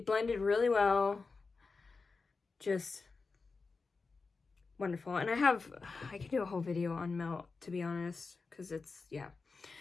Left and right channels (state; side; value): quieter; right; 4.3 dB